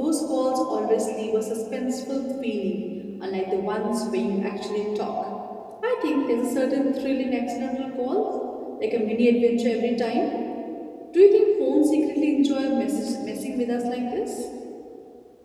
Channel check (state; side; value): identical; both; correlation 1.00